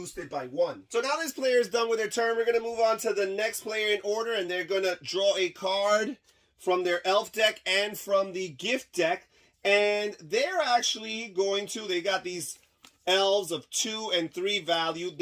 by 1. So now this player is done with their turn. We're going to move on to the next player in order, and they're going to draw a card from their elf deck and from the gift deck. And they're actually going to, they got these elves of 2 and 3 value.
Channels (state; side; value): identical; both; correlation 1.00